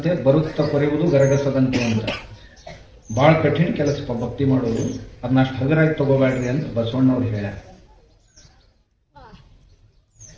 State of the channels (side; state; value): both; identical; correlation 1.00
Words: ಬರುತ್ತ ಕೊರೆಯುವುದು ಗರಗಸದಂತೆ ಅಂತ. ಬಹಳ ಕಠಿಣ ಕೆಲಸ ಭಕ್ತಿ ಮಾಡೋದು, ಅದನ್ನ ಅಷ್ಟು ಹಗುರಾಗಿ ತಗೋಬೇಡ್ರಿ ಅಂತ ಬಸವಣ್ಣವ್ರು ಹೇಳ್ಯಾರ.